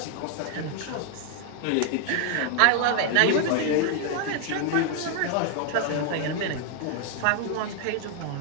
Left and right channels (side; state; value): both; different; correlation 0.00